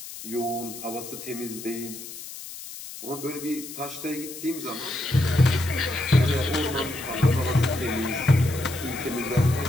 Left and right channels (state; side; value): noise; left; hiss, 12 dB below the sound